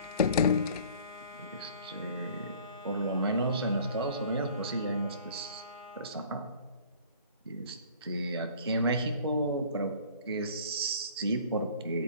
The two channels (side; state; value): both; inverted; correlation -0.50